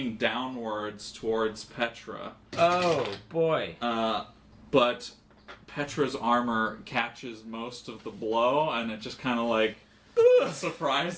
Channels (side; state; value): both; identical; correlation 1.00